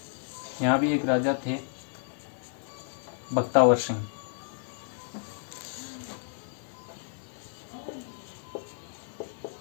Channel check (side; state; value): right; silent; 57 dB below the other